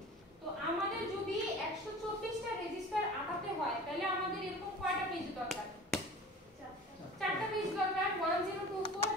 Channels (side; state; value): both; normal; correlation 0.40